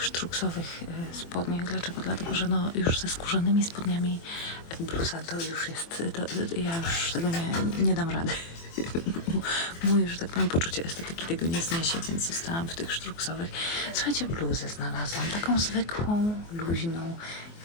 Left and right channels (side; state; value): right; late; 24 ms